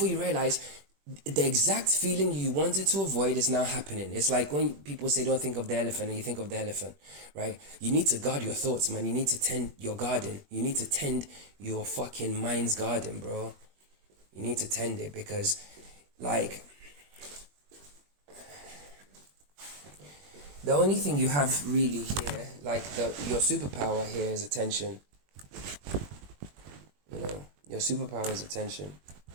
you realize, the exact feeling you wanted to avoid is now happening. It's like when people say don't think of the elephant, and you think of the elephant, right? You need to guard your thoughts, man. You need to tend your garden. You need to tend your fucking mind's garden, bro. You need to tend it, because, like, the only thing you have really here, like your superpower here, is attention. You know, your superpower is attention.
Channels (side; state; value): left; late; 21 ms